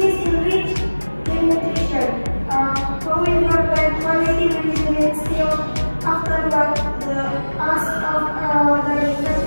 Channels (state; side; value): inverted; both; correlation -1.00